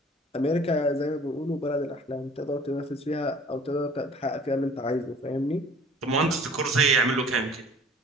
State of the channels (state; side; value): normal; both; correlation 0.49